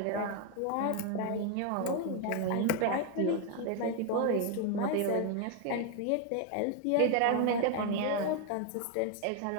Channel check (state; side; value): different; both; correlation 0.01